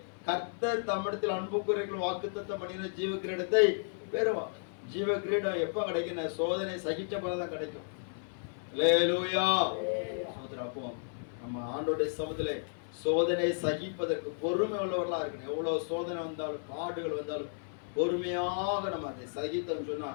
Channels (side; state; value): right; silent; 55 dB below the other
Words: கர்த்தர் தம்மிடத்தில் அன்பு கூறுகள் வாக்குத்தத்தம் பண்ணின ஜீவ கிரீடத்தை பெறுவான். ஜீவ கிரீடம் எப்ப கிடைக்கும்? சோதனை சகிச்ச பிறகுதான் கிடைக்கும். அல்லேலூயா. அப்போ நம்ம ஆண்டோடைய சமூகத்திலே சோதனை சகிப்பதற்கு பொறுமை உள்ளவர்களா இருக்கணும். எவ்வளவு சோதனை வந்தாலும் பாடுகள் வந்தாலும் பொறுமையாக நம்ம அதை சகித்தோம் சொன்னா